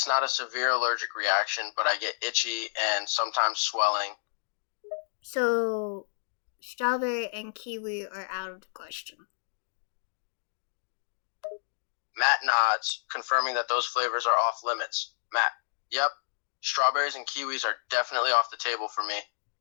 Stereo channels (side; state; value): right; silent; digital silence